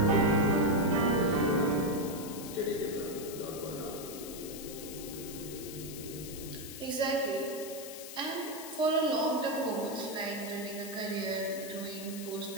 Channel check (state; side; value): noise; left; hiss, 11 dB below the sound